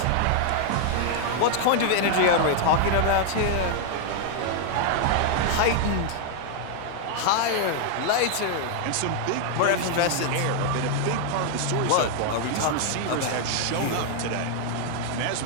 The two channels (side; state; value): both; different; correlation 0.00